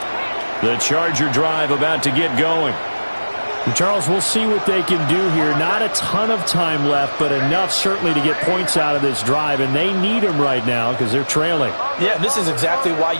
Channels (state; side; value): inverted; both; correlation -1.00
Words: The Charger drive about to get going. And Charles, we'll see what they can do here. Not a ton of time left, but enough certainly to get points out of this drive, and they need them right now because they're trailing. Yeah, this is exactly why